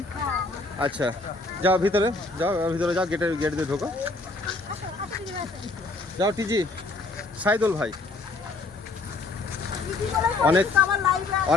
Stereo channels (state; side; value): quieter; right; 3.5 dB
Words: আচ্ছা, যাও ভিতরে, যাও, গেট দিয়ে ঢোকো। যাও টিজি, সাইদুল ভাই।